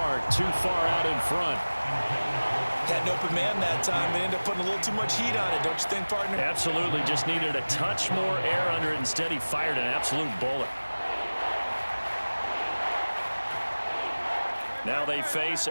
too far out in front. Had an open man that time. They ended up putting a little too much heat on it, don't you think, partner? Absolutely. Just needed a touch more air under it. Instead, he fired an absolute bullet. Now they face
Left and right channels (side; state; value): both; inverted; correlation -1.00